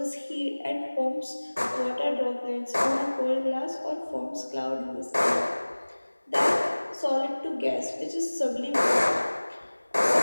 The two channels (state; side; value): inverted; both; correlation -1.00